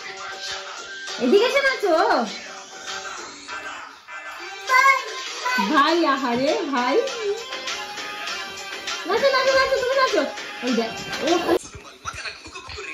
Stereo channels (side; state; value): both; identical; correlation 1.00